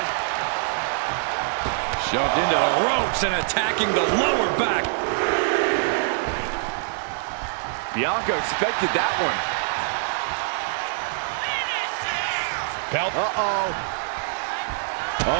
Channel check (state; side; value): silent; left; digital silence